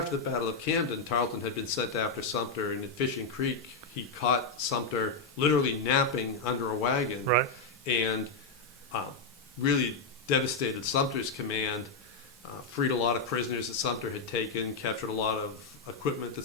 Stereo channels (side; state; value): right; quieter; 3.9 dB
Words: the Battle of Camden, Tarleton had been sent after Sumter, and at Fishing Creek, he caught Sumter literally napping under a wagon, Right. and really devastated Sumter's command, freed a lot of prisoners that Sumter had taken, captured a lot of equipment that